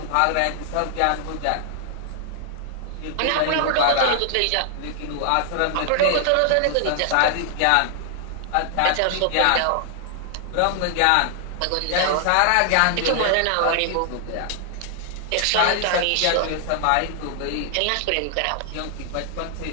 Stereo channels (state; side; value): different; both; correlation 0.00